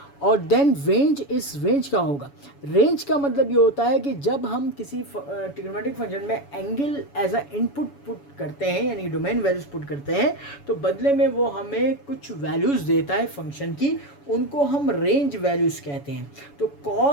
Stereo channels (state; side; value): late; right; 7.1 ms